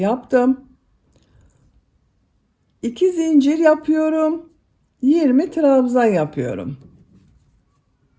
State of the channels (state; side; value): identical; both; correlation 1.00